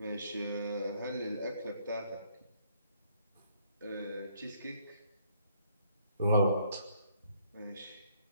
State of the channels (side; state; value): both; inverted; correlation -0.67